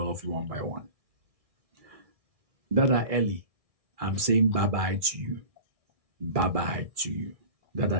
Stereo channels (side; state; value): left; late; 2.4 ms